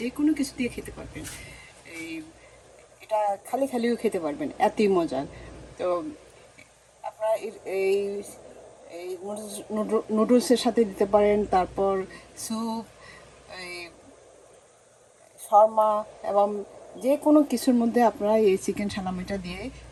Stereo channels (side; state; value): both; identical; correlation 1.00